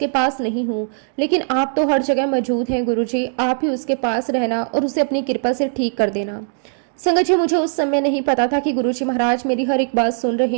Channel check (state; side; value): silent; left; digital silence